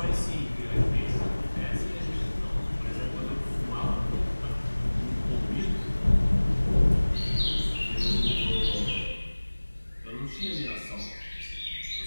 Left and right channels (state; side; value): inverted; both; correlation -1.00